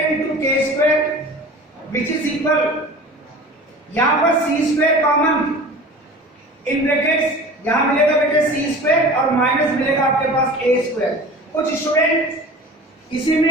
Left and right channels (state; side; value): normal; both; correlation 0.39